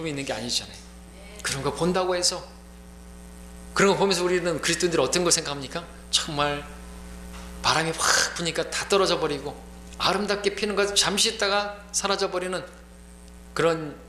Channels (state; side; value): identical; both; correlation 1.00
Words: 있는 게 아니잖아요. 그런 거 본다고 해서, 그런 거 보면서 우리는 그리스도인들이 어떤 걸 생각합니까? 정말 바람이 확 부니까 다 떨어져 버리고 아름답게 피는 것 잠시 있다가 사라져 버리는 그런